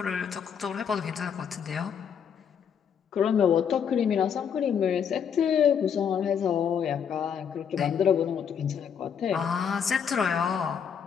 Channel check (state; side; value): quieter; right; 7.6 dB